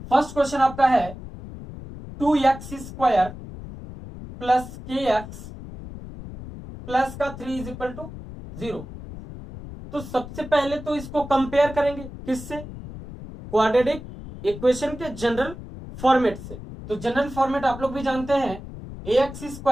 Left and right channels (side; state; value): left; noise; rumble, 12 dB below the sound